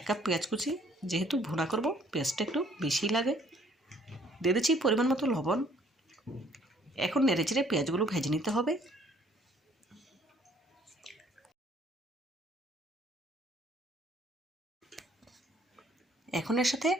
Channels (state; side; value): normal; both; correlation 0.61